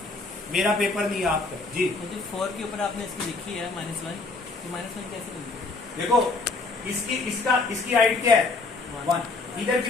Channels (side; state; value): right; quieter; 3.7 dB